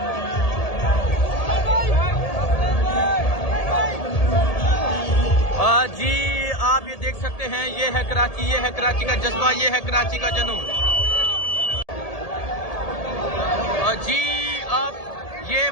जी आप ये देख सकते हैं, ये है कराची, ये है कराची का जज्बा, ये है कराची का जुनून। जी आप ये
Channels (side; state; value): right; late; 1.8 ms